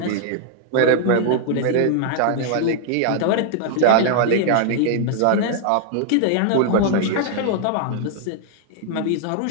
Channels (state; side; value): different; both; correlation 0.00